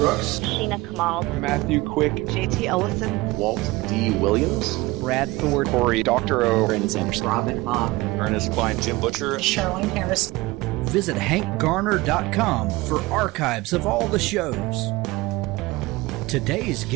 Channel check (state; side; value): quieter; left; 20.8 dB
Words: Sheena Kamal, Matthew Quick, JT Ellison, Walt D. Williams, Brad Ford, Corey Dr. O, Brandon Sanderson, Robin Mott, Ernest Klein, Jim Butcher, Charlene Harris. Visit hankgarner.com for archives of all the shows. Today's